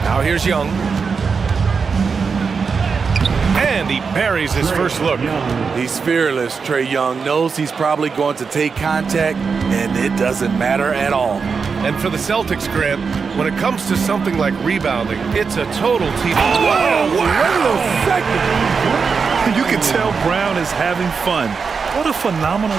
Now here's Young. And he buries his first look. He's fearless. Trae Young knows he's probably going to take contact, and it doesn't matter at all. And for the Celtics, Grant, when it comes to something like rebounding, it's a total team. Whoa, wait a second. You can tell Brown is having fun. What a phenomenal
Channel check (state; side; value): quieter; left; 5.4 dB